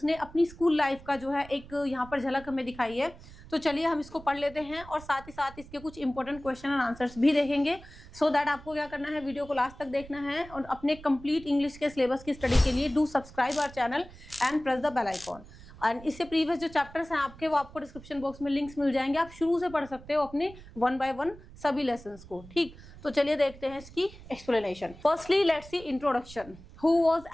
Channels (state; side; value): noise; right; rumble, 19 dB below the sound